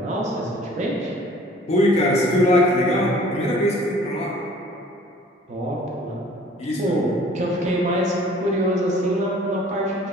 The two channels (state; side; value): normal; both; correlation 0.52